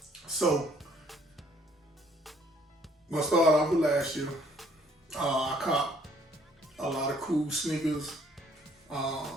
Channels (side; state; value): both; normal; correlation 0.62